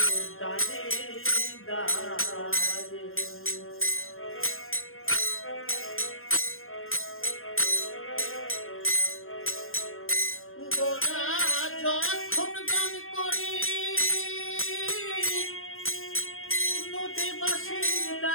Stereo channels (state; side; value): late; right; 0.61 ms